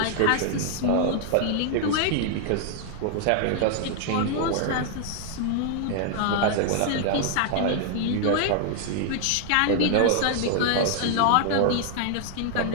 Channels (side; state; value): both; different; correlation 0.00